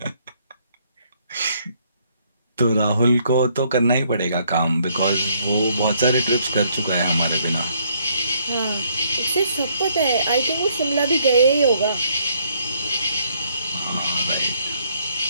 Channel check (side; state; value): both; inverted; correlation -0.68